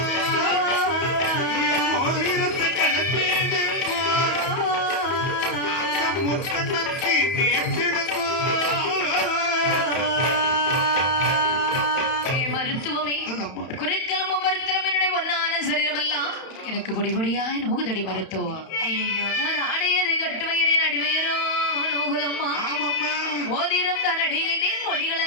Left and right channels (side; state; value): right; late; 31 ms